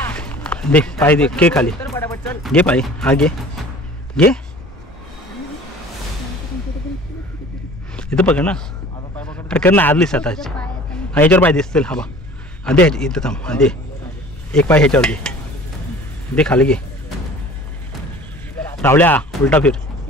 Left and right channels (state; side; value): normal; both; correlation 0.46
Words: दे पाय दे के खाली घे पाय हा घे घे इथं पकड ना अरे कर ना आदलीस आता हा ह्याच्यावर पाय दिसतील हा बा हा दे इथं थांब हा दे एक पाय ह्याच्यावर दे खाली घे रावल्या उलटा फिर